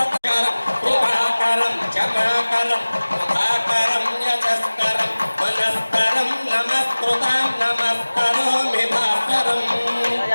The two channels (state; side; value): inverted; both; correlation -1.00